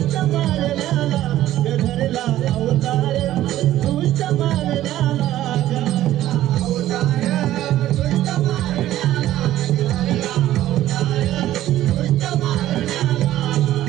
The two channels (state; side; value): quieter; left; 13.7 dB